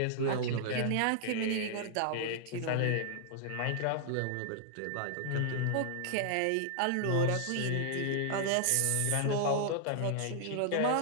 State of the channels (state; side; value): different; both; correlation -0.01